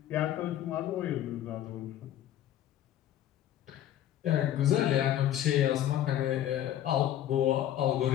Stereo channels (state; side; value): quieter; right; 11.8 dB